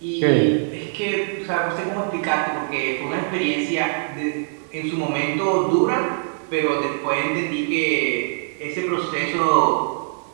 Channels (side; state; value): left; silent; digital silence